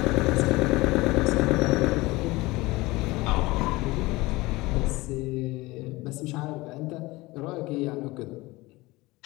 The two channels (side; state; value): right; quieter; 21.1 dB